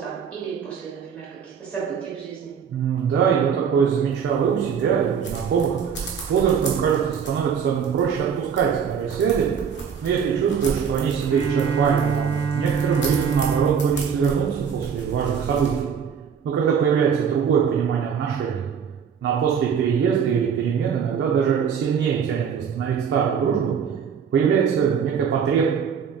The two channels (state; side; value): quieter; left; 7.1 dB